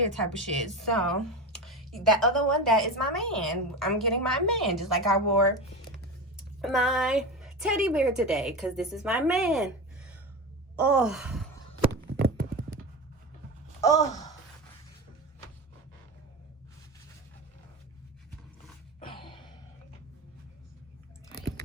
type of shit? So that other one, that is my man. I'm getting my man, just like I wore my teddy bear today, because this is my man. Oh,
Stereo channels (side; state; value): both; normal; correlation 0.24